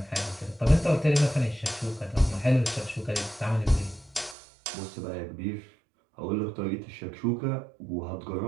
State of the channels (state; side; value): drops out; left; at 4.4 s